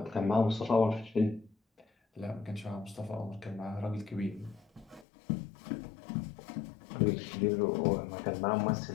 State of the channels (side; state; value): right; drops out; at 5.1 s